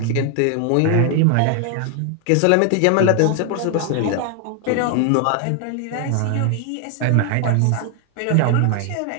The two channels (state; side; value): different; both; correlation 0.00